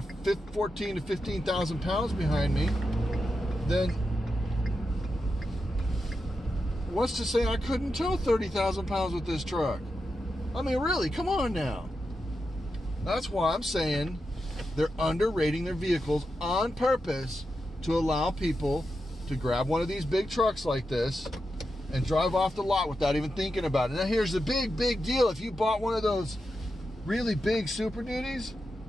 14 to 15,000 pounds behind me, then what's to say I couldn't tow 30,000 pounds with this truck? I mean, really, come on now. That's why I'm saying they're underrating their vehicles on purpose to allow people to grab one of these big trucks like this and drive off the lot without even thinking about it. Now, here's the big deal. If you bought one of those really big Super Duties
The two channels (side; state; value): both; normal; correlation 0.88